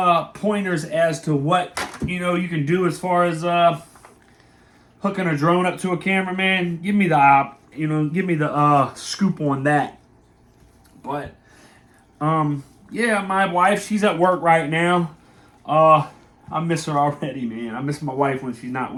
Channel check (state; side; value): identical; both; correlation 1.00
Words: pointers as to what you can do as far as hooking a drone up to a camera, man, give me the give me the scoop on that. But yeah, my wife, she's at work right now. I miss her already, man. I miss my wife when she's not